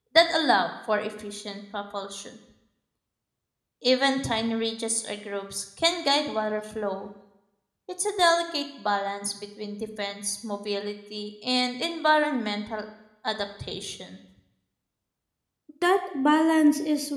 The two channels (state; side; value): identical; both; correlation 1.00